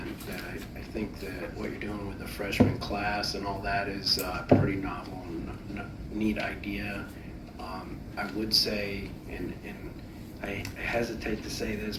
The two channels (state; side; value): identical; both; correlation 1.00